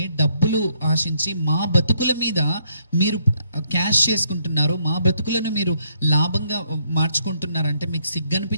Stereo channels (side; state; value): both; inverted; correlation -0.72